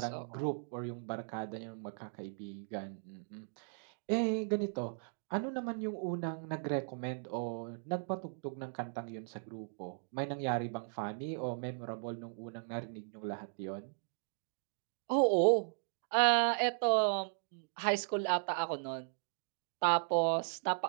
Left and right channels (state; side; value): silent; left; digital silence